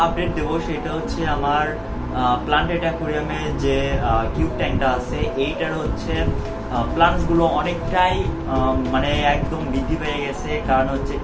আপডেট দেবো সেটা হচ্ছে আমার প্লান্টেড অ্যাকুয়ারিয়ামে যে কিউব ট্যাঙ্কটা আছে এইটার হচ্ছে প্লান্টসগুলো অনেকটাই মানে একদম বৃদ্ধি পেয়ে গেছে, কারণ হচ্ছে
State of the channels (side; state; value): both; identical; correlation 1.00